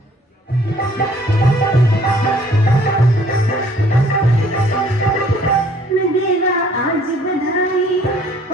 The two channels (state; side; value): normal; both; correlation 0.58